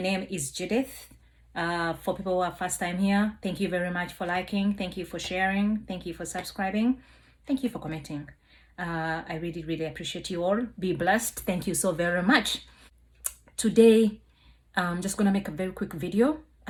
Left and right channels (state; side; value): identical; both; correlation 1.00